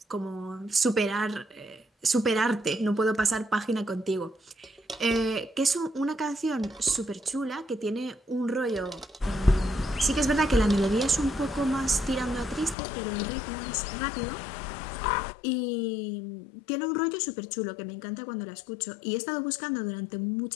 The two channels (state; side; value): drops out; right; at 12.8 s